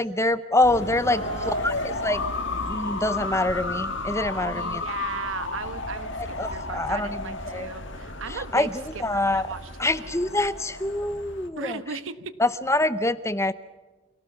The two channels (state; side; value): normal; both; correlation 0.44